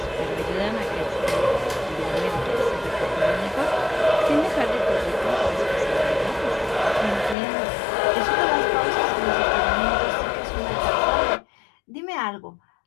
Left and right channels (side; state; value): right; drops out; at 7.4 s